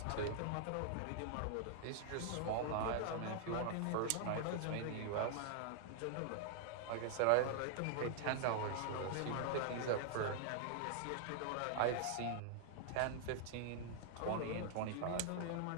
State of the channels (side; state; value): both; different; correlation 0.00